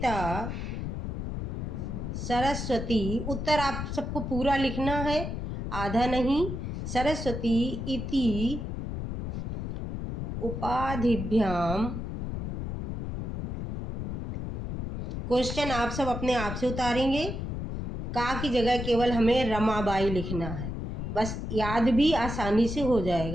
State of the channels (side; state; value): left; noise; rumble, 4 dB below the sound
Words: सरस्वती। उत्तर आप सबको पूरा लिखना है, आधा नहीं। सरस्वती इति उपाधिभ्याम, क्वेश्चन आप सब अपने आप से उतारेंगे। का की जगह केवल हमें रमाबाई लिखना है, बस याद भी आसानी से हो